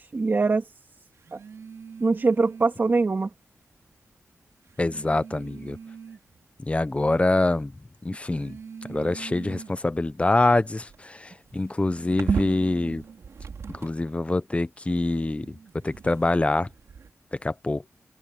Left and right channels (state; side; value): normal; both; correlation 0.93